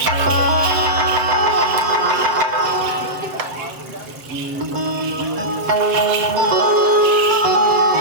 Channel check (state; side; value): late; left; 7.8 ms